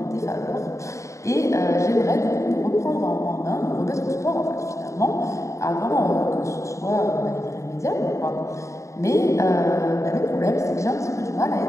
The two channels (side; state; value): right; late; 0.15 ms